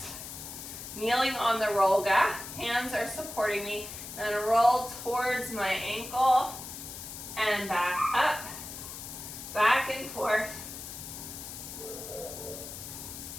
Kneeling on the Rolga, hands are supporting me. And then roll towards my ankle and back up, back and forth.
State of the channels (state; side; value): noise; left; hiss, 10 dB below the sound